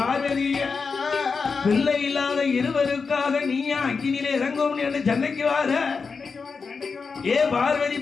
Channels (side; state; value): right; quieter; 5.0 dB